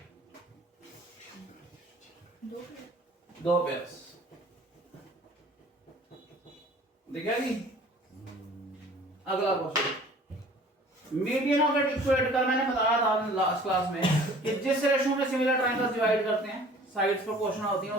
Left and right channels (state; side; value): normal; both; correlation 0.49